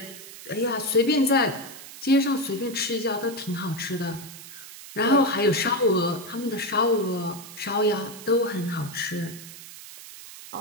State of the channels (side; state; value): right; noise; hiss, 15 dB below the sound